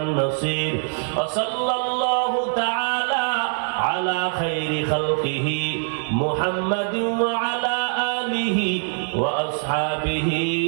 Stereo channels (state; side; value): silent; left; digital silence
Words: নাসির। ওয়া সাল্লাল্লাহু তাআলা আলা খাইরি খালকিহি মুহাম্মাদিন ওয়া আলা আলিহি ওয়া আসহাবিহি